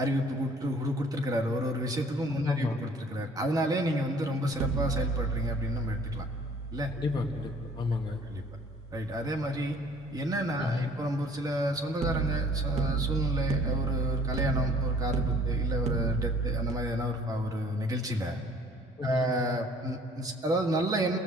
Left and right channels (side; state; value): both; normal; correlation 0.54